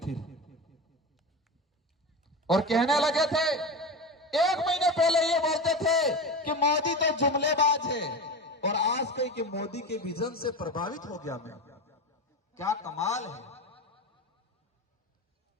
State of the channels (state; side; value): normal; both; correlation 0.24